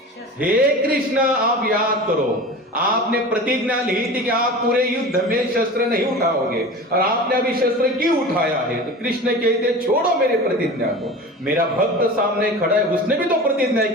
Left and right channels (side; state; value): both; normal; correlation 0.34